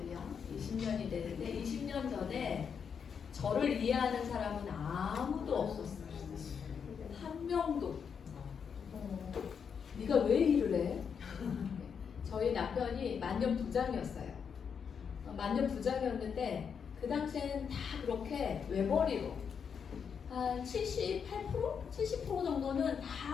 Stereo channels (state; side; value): quieter; right; 6.8 dB